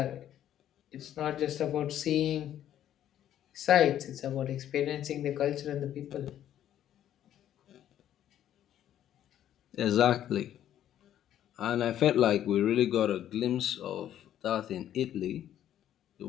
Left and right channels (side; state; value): right; quieter; 11.2 dB